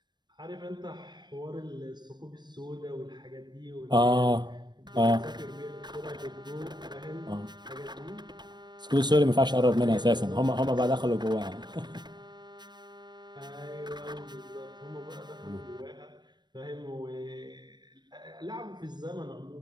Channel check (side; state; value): left; late; 0.21 ms